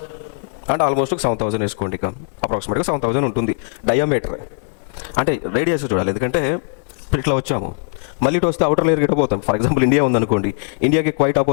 అంటే ఆల్మోస్ట్ 7000 వేసుకోండి, ఇక అప్రాక్సిమేట్గా 7000 ఉంటుంది డయామీటర్. అంటే రేడియస్ చూడాలి, ఎందుకంటే ఇట్లా వచ్చాము మళ్ళీ ఇటు వస్తే అవుటర్ లేయర్ గిట్ట పోతాం. ఫర్ ఎగ్జాంపుల్ ఇండియా ఉందనుకోండి, ఇండియాకి క్వైట్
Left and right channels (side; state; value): right; silent; digital silence